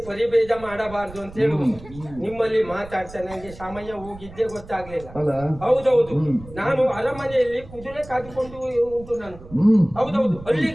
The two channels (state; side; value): noise; right; rumble, 17 dB below the sound